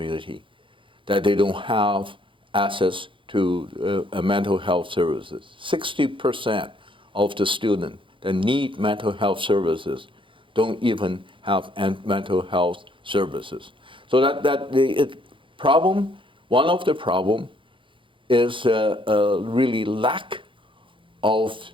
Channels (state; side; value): late; left; 0.25 ms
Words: that they don't have access to mental health services. 60% of the students that need mental health services don't even have mental health services. So one of the problem is really lack of